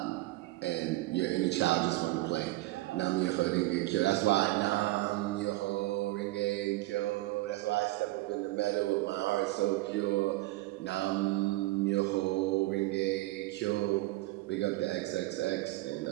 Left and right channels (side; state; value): left; quieter; 19.0 dB